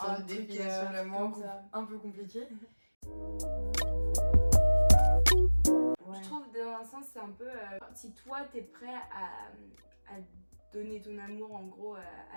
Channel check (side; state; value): both; inverted; correlation -1.00